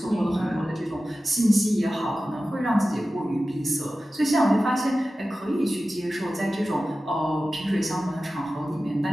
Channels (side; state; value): both; normal; correlation 0.95